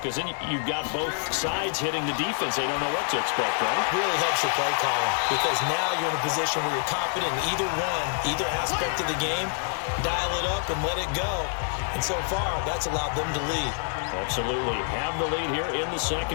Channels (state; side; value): silent; right; 55 dB below the other